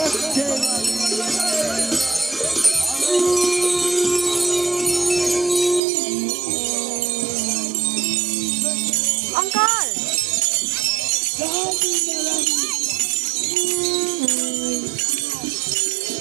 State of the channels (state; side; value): drops out; left; at 5.8 s